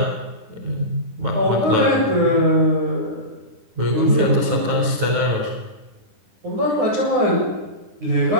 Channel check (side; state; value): left; late; 10 ms